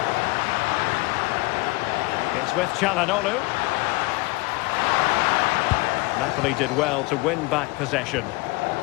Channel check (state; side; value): quieter; right; 23.1 dB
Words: It's with Çalhanoğlu. Napoli did well to win back possession.